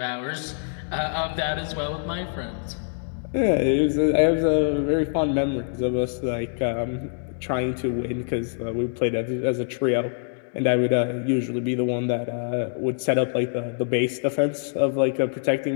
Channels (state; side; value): silent; right; digital silence